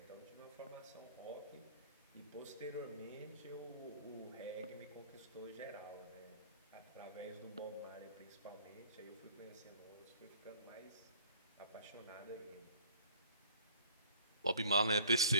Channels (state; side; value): inverted; both; correlation -0.52